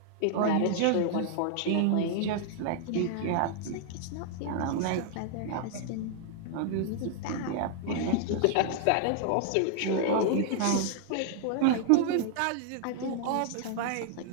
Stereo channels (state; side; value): different; both; correlation 0.00